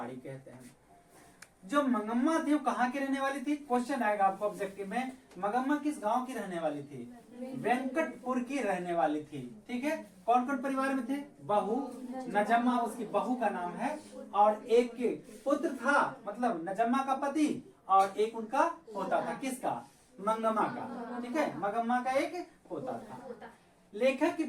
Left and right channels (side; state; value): both; identical; correlation 1.00